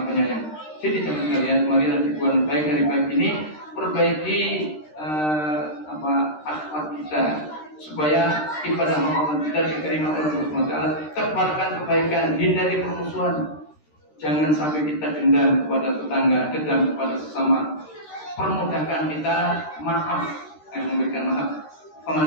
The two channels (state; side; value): late; right; 13 ms